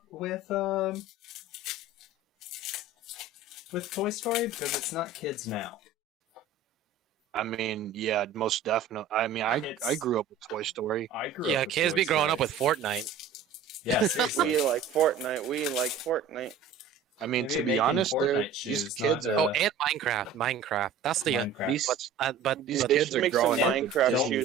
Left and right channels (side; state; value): left; quieter; 5.0 dB